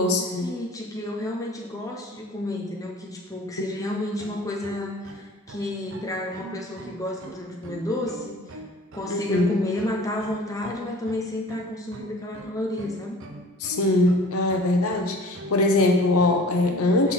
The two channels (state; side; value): normal; both; correlation 0.45